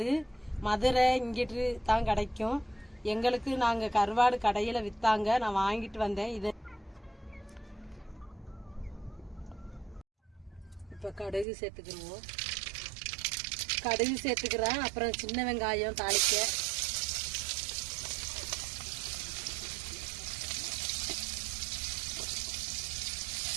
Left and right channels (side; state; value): left; drops out; at 11.5 s